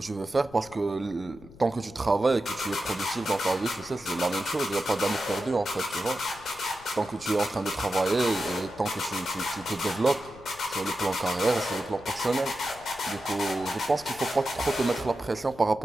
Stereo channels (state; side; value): noise; left; rumble, 21 dB below the sound